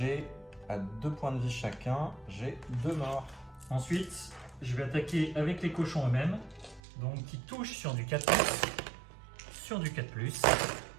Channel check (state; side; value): drops out; left; at 6.8 s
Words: à 2 points de vie chacun, j'ai 2 morts. Ensuite, je vais attaquer avec les cochons eux-mêmes, donc qui touchent sur du 4+, sur du 4+.